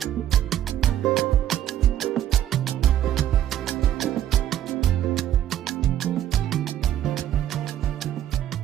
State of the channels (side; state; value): left; quieter; 11.6 dB